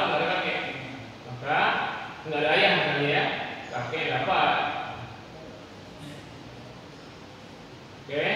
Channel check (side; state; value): both; identical; correlation 1.00